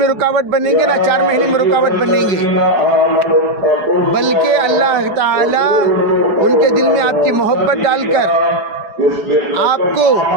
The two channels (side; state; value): left; late; 4.8 ms